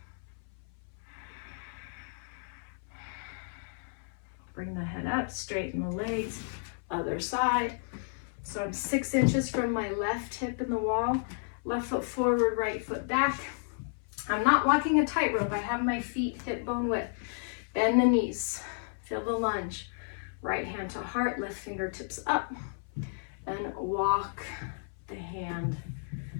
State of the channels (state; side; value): silent; right; 56 dB below the other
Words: Bring the head up, straighten the legs, other side. So I'm 6 inches from my left hip in the wall, left foot forward, right foot back. I'm not walking a tightrope. I have my feet hip bone width. Bend the knees, feel the lunge. Right hand to heart, left fingertips up, and walk the hand